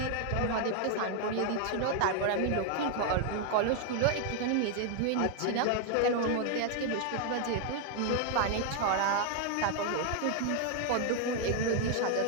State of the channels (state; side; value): different; both; correlation 0.00